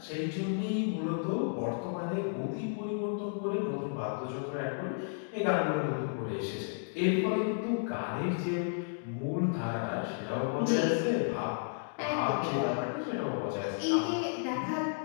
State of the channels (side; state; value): right; silent; digital silence